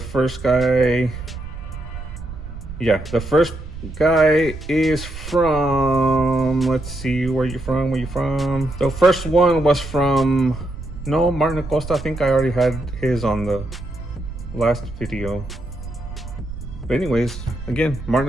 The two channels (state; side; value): noise; right; rumble, 11 dB below the sound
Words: guy, yeah, the first guy is from, let's see, where you from? The first one was from, no, Martin Acosta. I think I already had his on the last video. But anyways, again, Martin